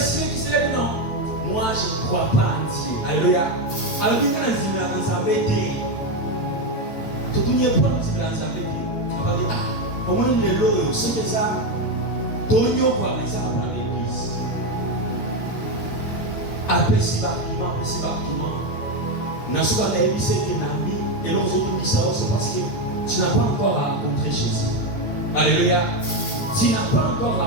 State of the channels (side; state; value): right; late; 8.7 ms